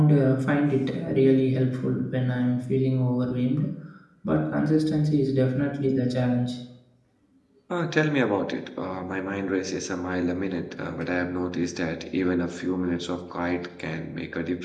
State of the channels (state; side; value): identical; both; correlation 1.00